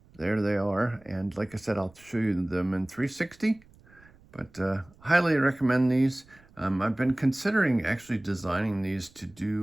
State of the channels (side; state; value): right; noise; rumble, 27 dB below the sound